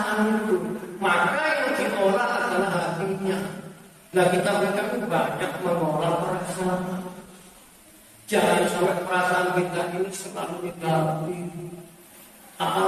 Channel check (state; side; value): identical; both; correlation 1.00